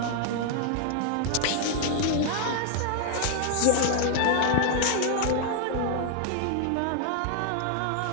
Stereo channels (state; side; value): different; both; correlation 0.00